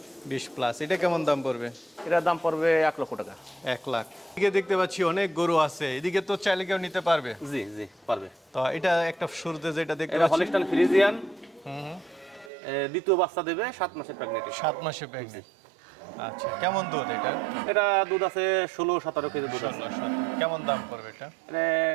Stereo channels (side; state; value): left; drops out; at 12.5 s